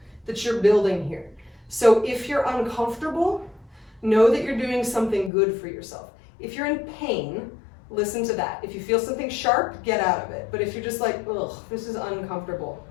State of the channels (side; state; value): right; drops out; at 5.3 s